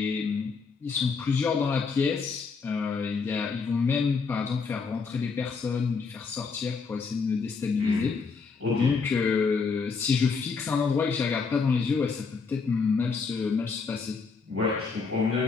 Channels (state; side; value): quieter; right; 5.0 dB